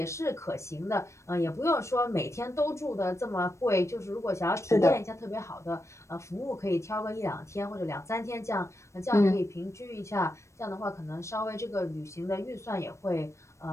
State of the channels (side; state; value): right; late; 0.14 ms